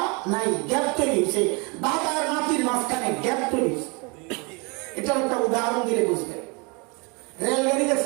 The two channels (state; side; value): quieter; left; 30.4 dB